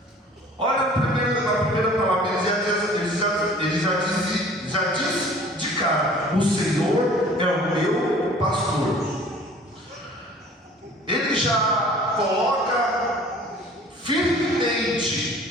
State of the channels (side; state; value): both; normal; correlation 0.49